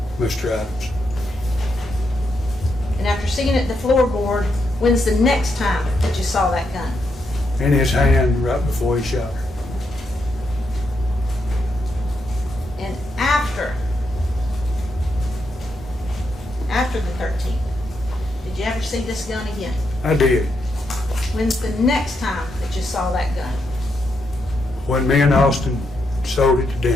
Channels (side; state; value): both; normal; correlation 0.81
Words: Mr. Adams. And after seeing it at the floorboard, when's the next time that you saw that gun? In his hand right before he shot her. And after the 13th, did you ever see this gun again? I did. When's the next time that you saw that gun? When me and Austin sold it to